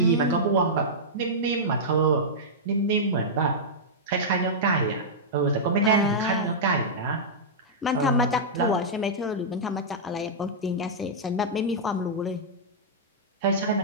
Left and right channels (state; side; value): normal; both; correlation -0.10